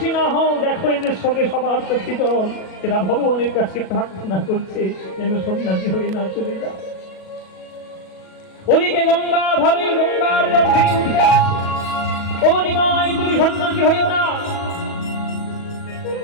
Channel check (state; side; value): late; right; 37 ms